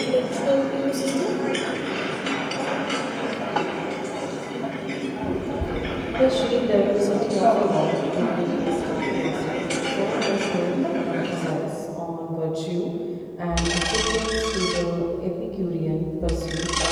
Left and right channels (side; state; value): both; identical; correlation 1.00